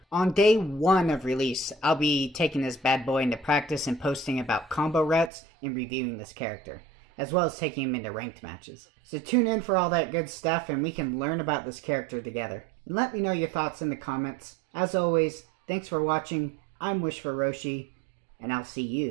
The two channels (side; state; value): left; drops out; at 5.3 s